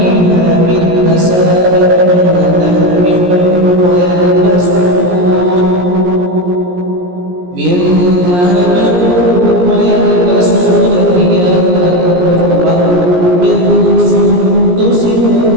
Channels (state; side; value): late; left; 17 ms